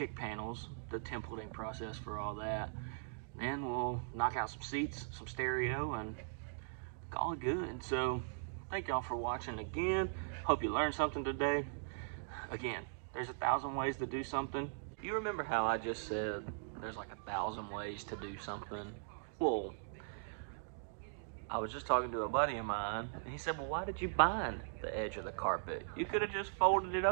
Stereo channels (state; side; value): silent; left; digital silence